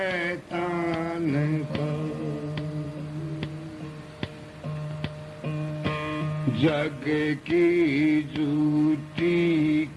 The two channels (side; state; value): both; identical; correlation 1.00